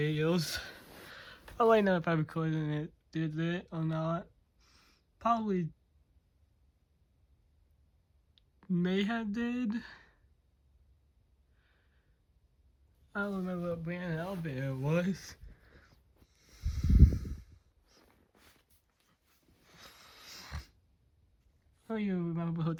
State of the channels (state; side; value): identical; both; correlation 1.00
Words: I'll let you know if I recorded it, did it or not. Probably may have did. I don't remember what brand elevator it was. I don't even remember what